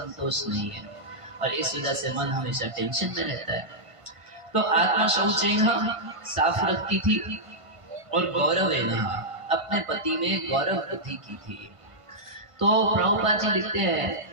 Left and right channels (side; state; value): left; late; 1.5 ms